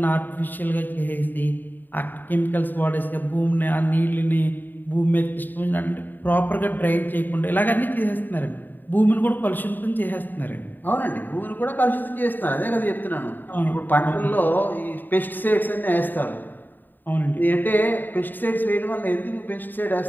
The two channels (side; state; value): right; late; 0.090 ms